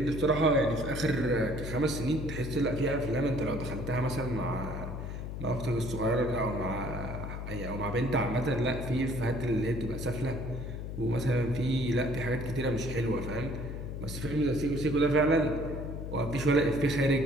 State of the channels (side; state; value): left; noise; hum, 6 dB below the sound